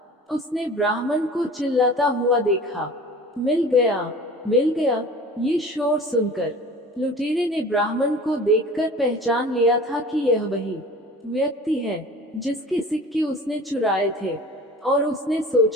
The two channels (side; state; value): both; normal; correlation 0.41